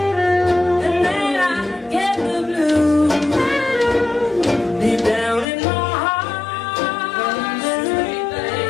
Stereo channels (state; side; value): drops out; right; at 5.5 s